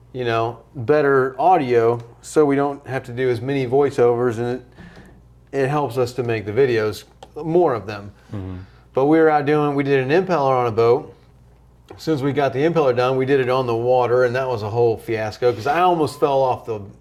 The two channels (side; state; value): both; identical; correlation 1.00